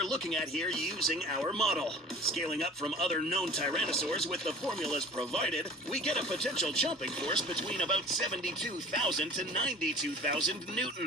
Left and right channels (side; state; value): both; normal; correlation 0.42